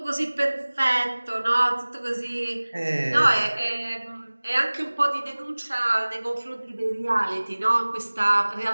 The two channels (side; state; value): both; inverted; correlation -1.00